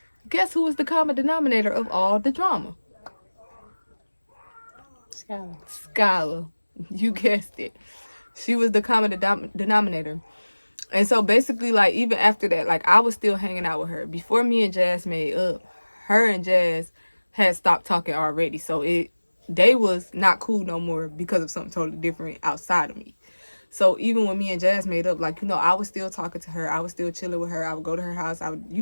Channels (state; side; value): inverted; both; correlation -1.00